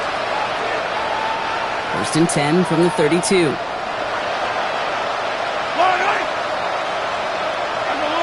1st and 10 from the 32.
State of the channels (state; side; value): identical; both; correlation 1.00